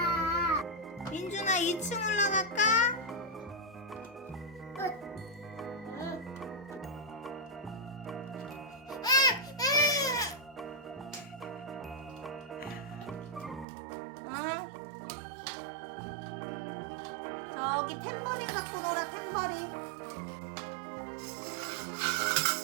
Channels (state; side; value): drops out; left; at 13.7 s